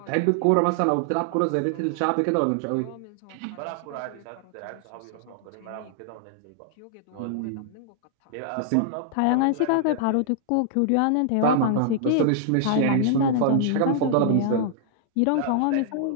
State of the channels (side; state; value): both; different; correlation -0.01